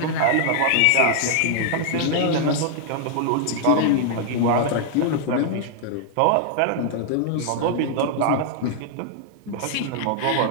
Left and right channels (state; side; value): different; both; correlation -0.01